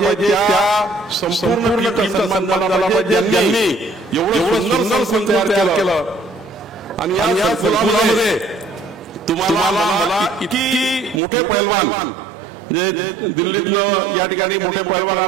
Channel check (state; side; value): drops out; left; at 11.2 s